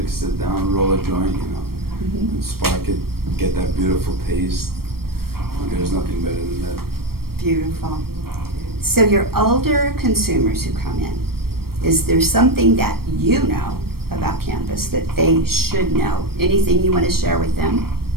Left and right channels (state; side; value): late; left; 0.94 ms